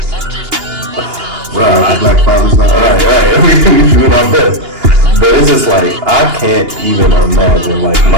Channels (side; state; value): left; late; 2.8 ms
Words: black fathers, right. We doing our best. But it's just like, I can't even imagine, like,